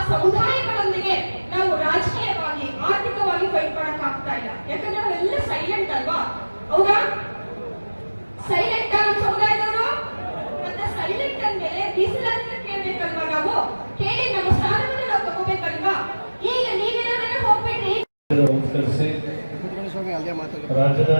ಸಮುದಾಯಗಳೊಂದಿಗೆ ನಾವು ರಾಜಕೀಯವಾಗಿ ಆರ್ಥಿಕವಾಗಿ ಫೈಟ್ ಮಾಡಕ್ ಆಗ್ತಾ ಇಲ್ಲ. ಯಾಕಂದ್ರೆ ನಾವೆಲ್ಲ ಸೈಲೆಂಟ್ ಅಲ್ವಾ? ಹೌದಾ? ಸೈಲೆಂಟ್ ನಮ್ಮ ಸಮುದಾಯದವರು. ಮತ್ತೆ ಸೈಲೆಂಟ್ ಅಂದ್ಮೇಲೆ ಮೀಸಲಾತಿನ ಕೇಳ್ಬೇಕಲ್ವಾ? ನಾವು ಕೇಳಿ ನಮ್ಮ ಸ್ಥಾನವನ್ನು ನಾವು ತಗೋಬೇಕಲ್ವಾ? ಈಗ ನೀವೇನಾದ್ರೆ ಹೋಗ್ಬೇಡ್ರಿ.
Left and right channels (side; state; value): both; inverted; correlation -1.00